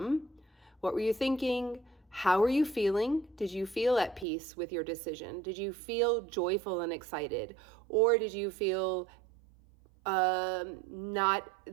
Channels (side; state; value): left; drops out; at 4.2 s